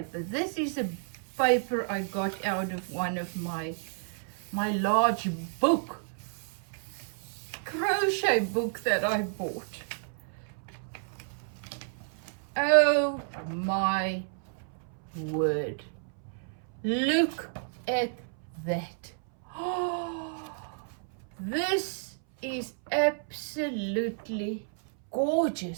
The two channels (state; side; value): silent; left; 57 dB below the other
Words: This is a paper I got out of one of my large crochet book that I bought. Oh my word. Look at that. Oh, this is absolutely